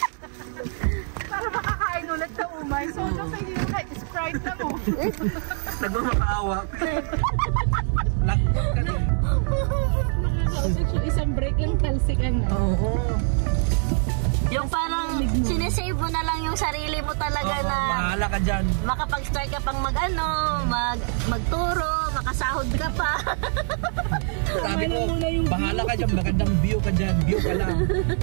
Para makakain ulit sa umay. So, pwede yung kahit Sprite na mo. Nagmamakaawa. Lakot ka din. Isang break lang talsikan na. Oo. Yung parang sinesave mo na lang yung sarili mo talaga na Bahala ka dyan. makapag-start ka pang magturo, makasahod ka pa. Sabi ko, bahala ka dyan. Magandang view ka dyan. View ka lang.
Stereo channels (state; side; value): silent; left; 55 dB below the other